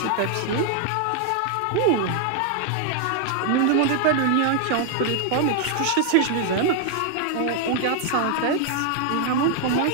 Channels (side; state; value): both; different; correlation 0.00